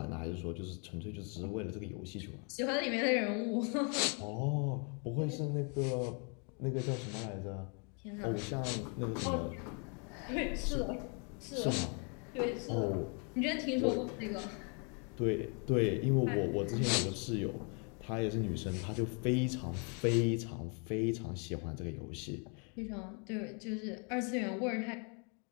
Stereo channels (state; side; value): quieter; right; 37.1 dB